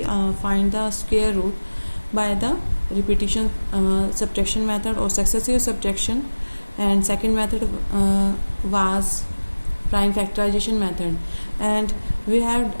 find the square root by the repetition subtraction method or successive subtraction, and second method was prime factorization method, and we had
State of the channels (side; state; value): both; inverted; correlation -1.00